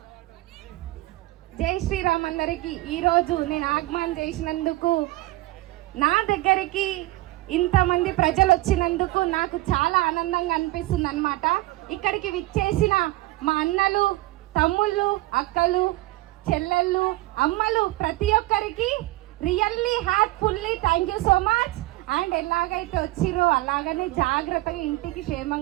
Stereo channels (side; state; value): left; quieter; 19.1 dB